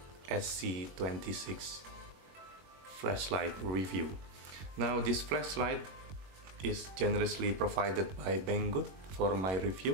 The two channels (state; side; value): late; left; 21 ms